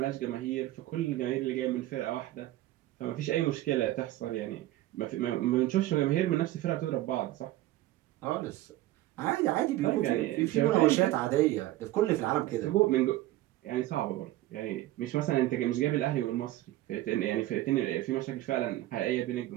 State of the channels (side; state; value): left; quieter; 15.8 dB